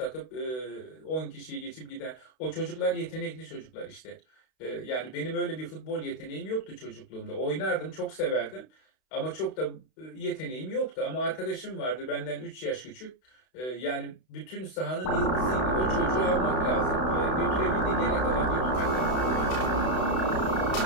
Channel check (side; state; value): right; late; 32 ms